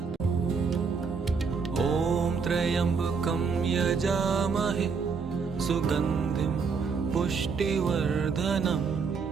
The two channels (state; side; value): quieter; left; 5.4 dB